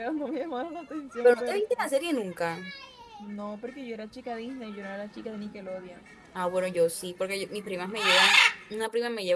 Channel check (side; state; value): both; identical; correlation 1.00